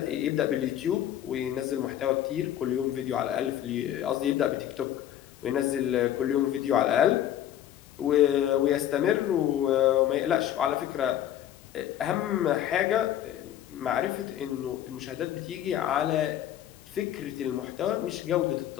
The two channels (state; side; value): quieter; right; 11.4 dB